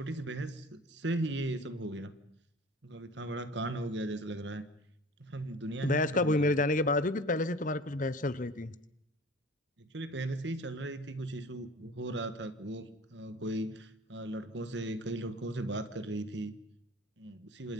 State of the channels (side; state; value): both; normal; correlation 0.42